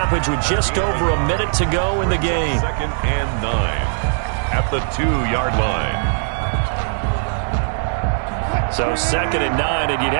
with just over a minute to go in the game. 2nd and 9 at the 2-yard line. So 2nd and 9, and you'd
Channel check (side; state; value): left; silent; digital silence